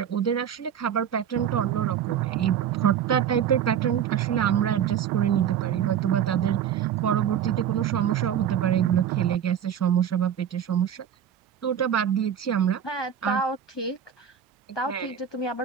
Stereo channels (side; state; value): left; quieter; 9.1 dB